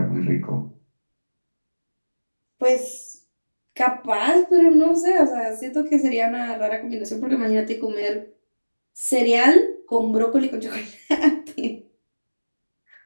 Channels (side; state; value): both; inverted; correlation -1.00